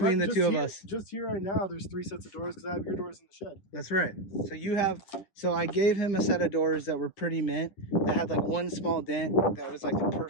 the two of us. Just here right now, there's 3 sets of doors because I have your doors in the shed. That's right. So you have. So I gave him a set of doors that were pretty mint. That had like one small dent. That was like the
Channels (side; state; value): right; late; 10 ms